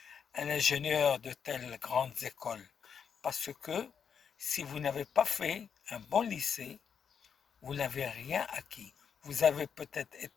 un ingénieur de telles grandes écoles, parce que si vous n'avez pas fait un bon lycée, vous n'avez rien acquis. Vous avez peut-être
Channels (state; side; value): quieter; right; 7.1 dB